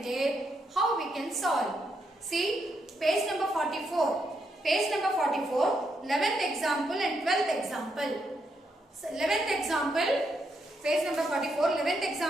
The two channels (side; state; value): both; normal; correlation 0.79